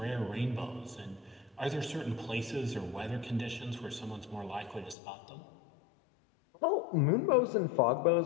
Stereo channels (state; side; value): drops out; right; at 5.0 s